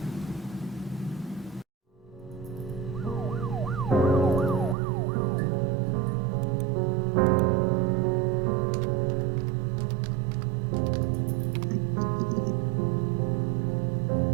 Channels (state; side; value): drops out; left; at 4.8 s